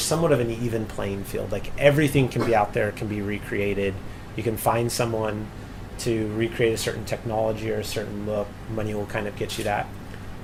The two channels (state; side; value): identical; both; correlation 1.00